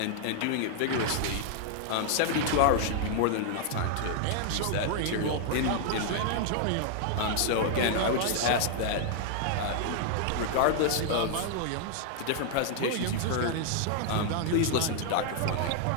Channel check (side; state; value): both; different; correlation 0.00